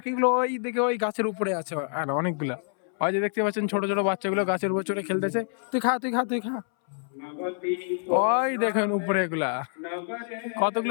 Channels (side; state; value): right; silent; 60 dB below the other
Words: ওই দিকে ওই গাছের উপরে আছে, আর অনেকগুলা ওই যে দেখতে পাচ্ছেন ছোট ছোট বাচ্চাগুলো গাছের উপর চড়ে খেলতেছে। তুই খা, তুই খা, তুই খা। ওই দেখেন উপরে এগুলা